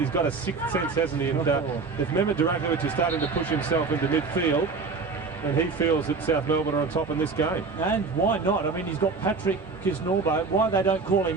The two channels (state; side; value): quieter; left; 4.5 dB